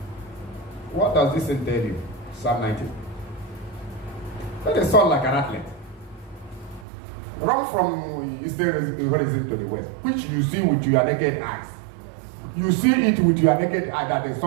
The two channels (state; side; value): drops out; left; at 6.9 s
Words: does this tell you? Psalm 19. Let the sun like an athlete. Run from eastern horizon to the west, which you see with your naked eyes. You see it with your naked eye that the